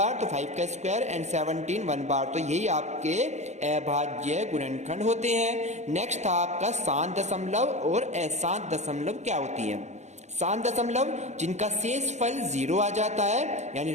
तो 5 का स्क्वायर एंड 17 1 बार, तो यही आपके अभाज्य गुणनखंड होते हैं। नेक्स्ट था आपका शांत दशमलव और अशांत दशमलव क्या होती है। शांत दशमलव जिनका शेषफल 0 आ जाता है, यानी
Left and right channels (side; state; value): left; late; 0.33 ms